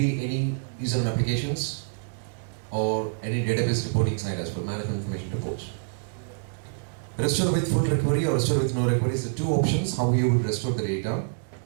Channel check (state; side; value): silent; left; digital silence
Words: any user and applications or any database reporting side as well, management information reports. Restore with full recovery or restore with no recovery is the two options how you would restore the data.